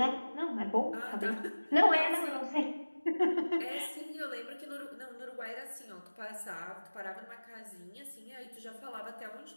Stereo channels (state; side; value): inverted; both; correlation -1.00